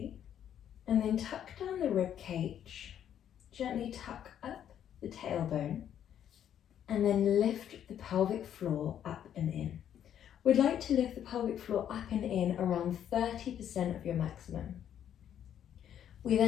and then tuck down the rib cage. Gently tuck up the tailbone and then lift the pelvic floor up and in. We'd like to lift the pelvic floor up and in around 30% of your maximum. We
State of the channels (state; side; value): quieter; right; 9.9 dB